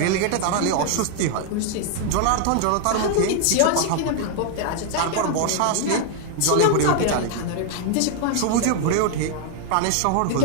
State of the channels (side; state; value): both; different; correlation 0.00